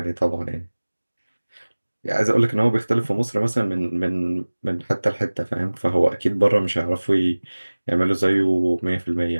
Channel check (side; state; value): both; inverted; correlation -1.00